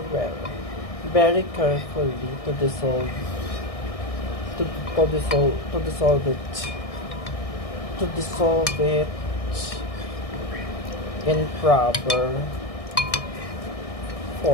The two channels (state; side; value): late; right; 1.6 ms